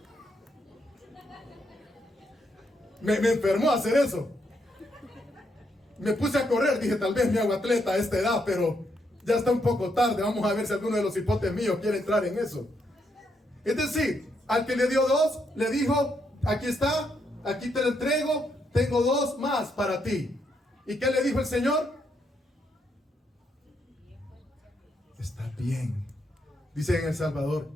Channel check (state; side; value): normal; both; correlation 0.77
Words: Me enfermó hacer eso. Me puse a correr, dije, tal vez me hago atleta a esta edad, pero ya está un poco tarde. Vamos a ver si alguno de los hipotes míos quiere entrar en eso. Es decir, al que le dio 2, le dijo, aquí está, aquí te lo entrego, tengo 2 más para ti. ¿Y qué le dijo el Señor? Está bien. Dice en El Salvador,